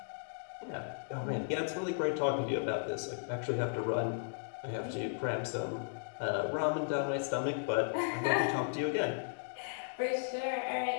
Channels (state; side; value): silent; right; digital silence